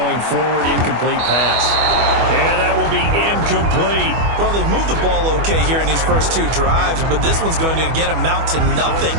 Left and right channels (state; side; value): late; left; 25 ms